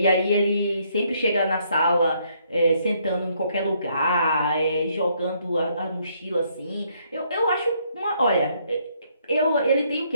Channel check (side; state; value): both; inverted; correlation -0.70